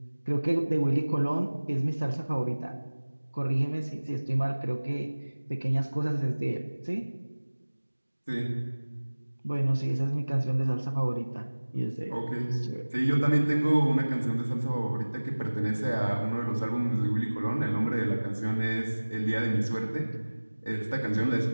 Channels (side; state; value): both; inverted; correlation -1.00